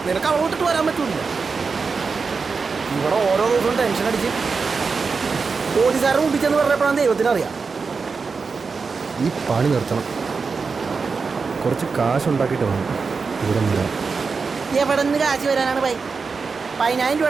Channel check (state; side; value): quieter; left; 4.9 dB